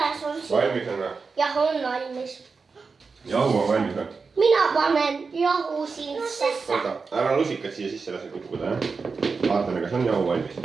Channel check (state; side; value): quieter; left; 4.8 dB